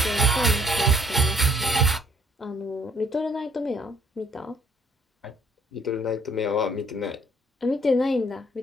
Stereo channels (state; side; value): normal; both; correlation 0.63